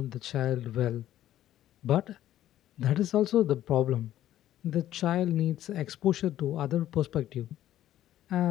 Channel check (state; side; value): quieter; right; 12.8 dB